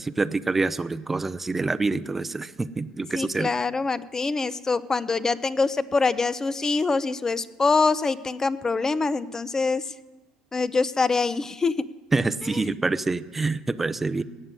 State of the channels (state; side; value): normal; both; correlation 0.89